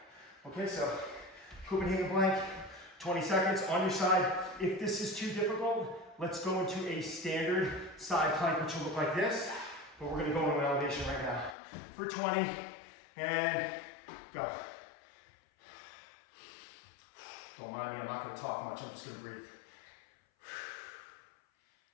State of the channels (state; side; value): drops out; right; at 11.6 s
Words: Okay, so Copenhagen plank, 20 seconds on your side. If this is too difficult, let's go into a standard side plank, which will look like this, but we're gonna go into an elevation right now. For 20, And go. Don't mind me, I'm not gonna talk much, I'm just gonna breathe.